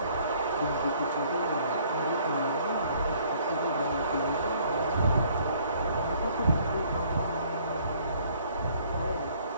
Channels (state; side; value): inverted; both; correlation -0.60